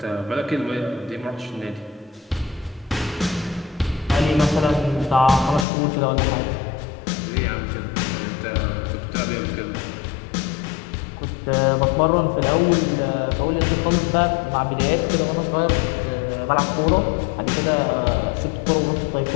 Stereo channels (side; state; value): right; drops out; at 5.7 s